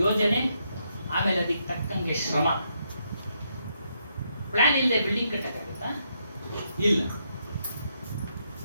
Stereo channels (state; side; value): inverted; both; correlation -0.77